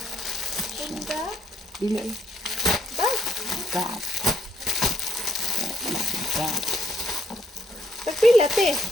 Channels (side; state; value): both; normal; correlation 0.68